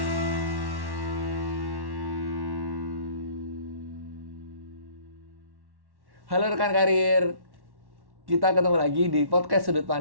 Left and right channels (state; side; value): late; left; 1.1 ms